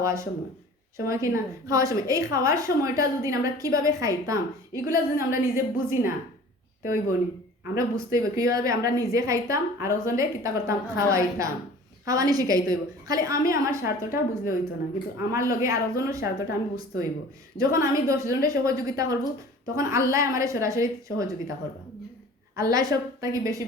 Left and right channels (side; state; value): both; normal; correlation 0.45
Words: সময় কি না খাওয়ার সময় এই খাওয়ার সময়টা যদি আমরা কিভাবে খাইতাম এগুলা যদি আমরা নিজে বুঝি না তো ওই বনি আমরা বুঝতে হইব কীভাবে আমরা নিজে খাইতাম আর ওজনে কিতা করতাম খাওয়াইতাম খাওয়ানি শিখাইতে হইব খালি আমি আমার স্বার্থটা বুঝলে হইতো না কিন্তু আমার লগে আর ওজনের স্বার্থটা আমি বুঝতে হইব যখন আমি 10 জনের সহযোগিতা করব তখন আল্লাহ আমার সরাসরি সহযোগিতা করবা আল্লাহ সব তাকে বেশি